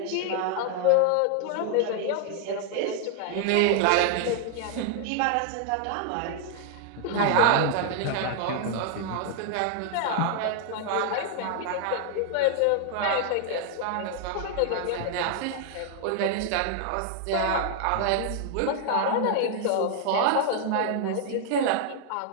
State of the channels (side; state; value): both; different; correlation 0.00